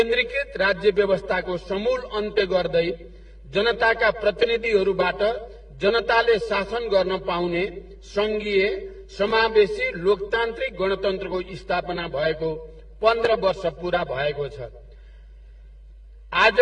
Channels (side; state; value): both; identical; correlation 1.00